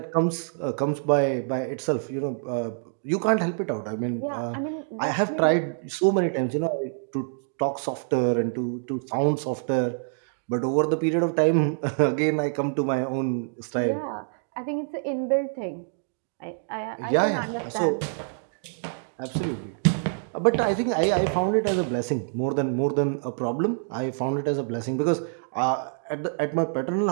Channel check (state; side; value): silent; left; digital silence